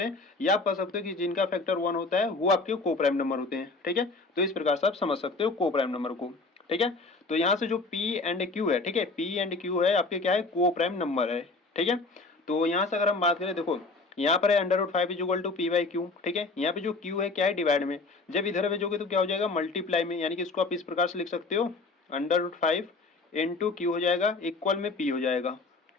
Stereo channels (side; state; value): right; quieter; 3.7 dB